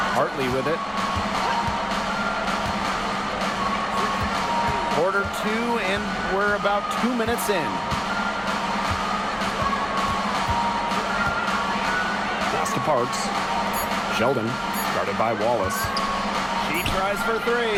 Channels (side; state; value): both; identical; correlation 1.00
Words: Hartley with it. Quarter 2, and we're about 2 minutes in. Pass to Parks. Sheldon, guarded by Wallace. She tries for